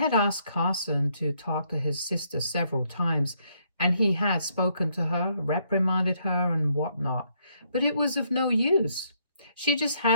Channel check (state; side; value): inverted; both; correlation -0.72